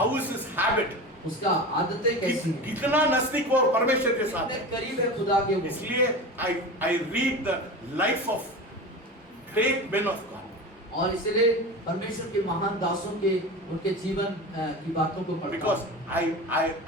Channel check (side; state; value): both; normal; correlation 0.29